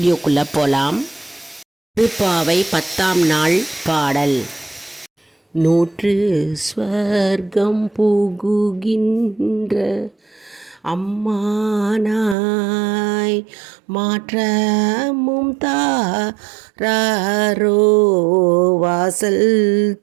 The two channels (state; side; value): drops out; left; at 12.4 s